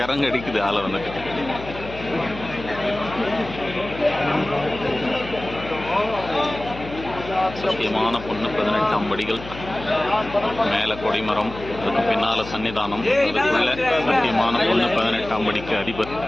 அடிக்குது ஆளை வந்துட்டு. சத்தியமான பொண்ணு 18ஆம் படிகள், மேலே கொடிமரம், அதுக்கு பின்னால சன்னிதானம், அதுக்குள்ள சத்தியமான பொண்ணு 18ஆம் படிக்கு அதிபர்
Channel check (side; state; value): left; noise; hum, 13 dB below the sound